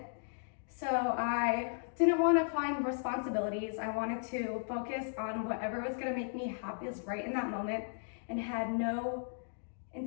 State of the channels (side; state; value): right; silent; digital silence